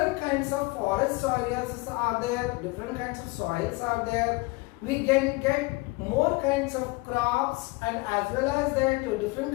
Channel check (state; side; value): quieter; right; 24.3 dB